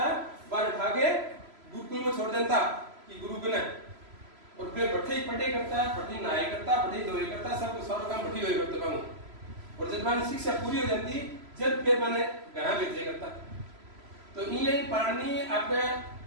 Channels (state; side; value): late; left; 3.0 ms